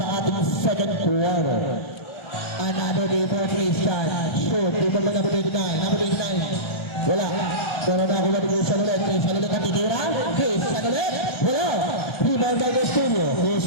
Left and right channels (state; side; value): late; right; 1.4 ms